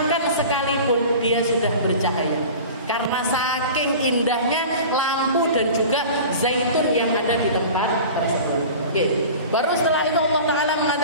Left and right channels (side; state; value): both; inverted; correlation -0.38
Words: sekalipun dia sudah bercahaya. Karena saking indahnya lampu dan juga zaitun yang ada di tempat tersebut. Baru setelah itu Allah Ta'ala